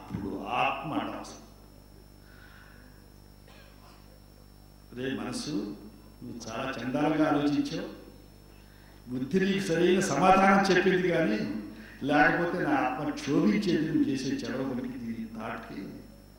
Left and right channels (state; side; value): identical; both; correlation 1.00